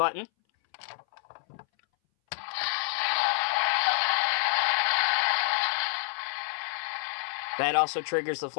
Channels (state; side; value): silent; right; 59 dB below the other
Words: That also triggers the